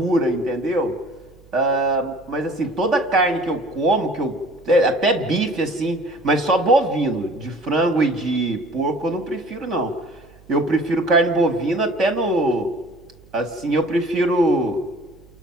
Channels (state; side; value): noise; right; hum, 26 dB below the sound